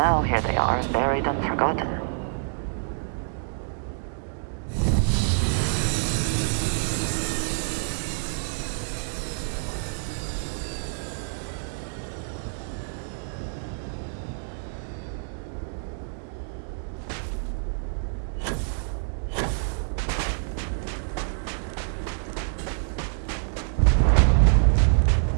here they are, buried and forgotten.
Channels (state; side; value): silent; left; digital silence